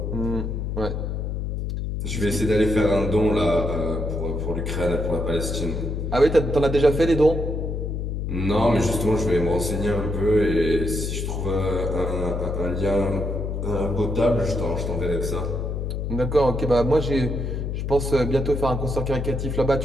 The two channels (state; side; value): noise; left; hum, 3 dB below the sound